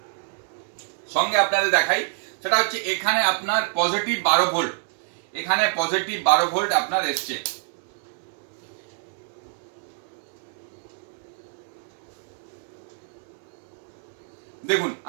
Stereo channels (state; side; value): silent; left; 61 dB below the other